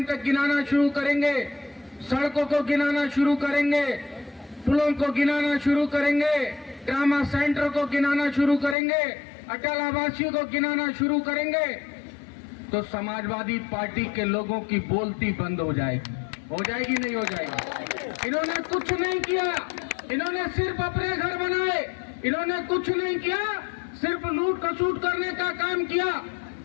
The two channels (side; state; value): right; drops out; at 8.8 s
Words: तक गिनाना शुरू करेंगे, सड़कों को गिनाना शुरू करेंगे, पुलों को गिनाना शुरू करेंगे, ट्रामा सेंटर को गिनाना शुरू करेंगे, अटल आवासीय को गिनाना शुरू करेंगे, तो समाजवादी पार्टी के लोगों की बोलती बंद हो जाएगी। हो जाएगी नहीं हो जाएगी? इन्होंने कुछ नहीं किया, इन्होंने सिर्फ अपने घर बनाए, इन्होंने कुछ नहीं किया, सिर्फ लूट खसूट करने का काम किया।